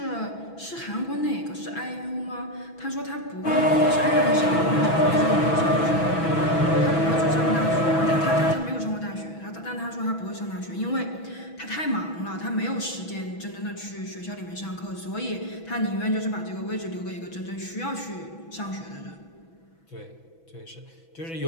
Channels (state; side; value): late; right; 6.1 ms